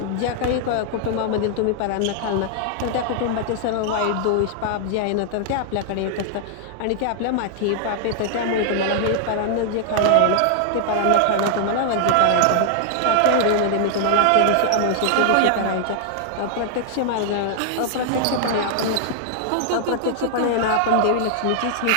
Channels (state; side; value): different; both; correlation -0.01